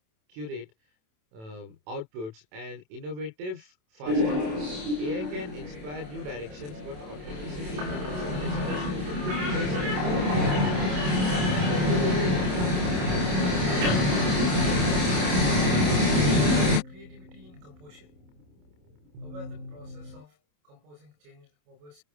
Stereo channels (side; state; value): left; late; 27 ms